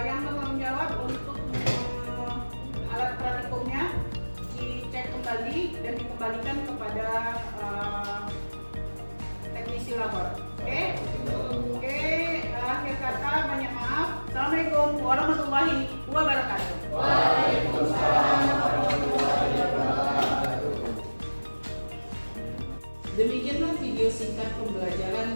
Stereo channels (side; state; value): both; inverted; correlation -1.00